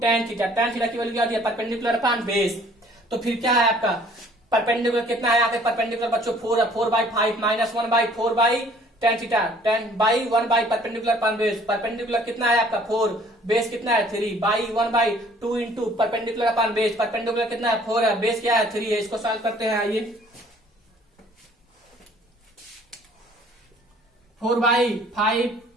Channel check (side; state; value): both; normal; correlation 0.56